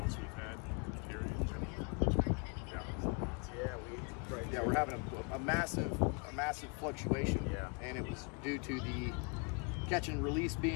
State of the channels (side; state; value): right; quieter; 33.7 dB